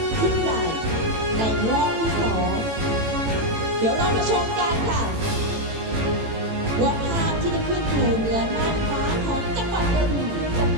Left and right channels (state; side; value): late; left; 18 ms